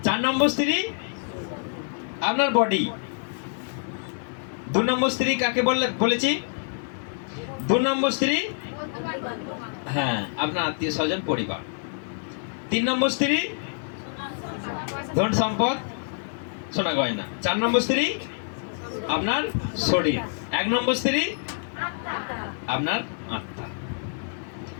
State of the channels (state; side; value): silent; right; 61 dB below the other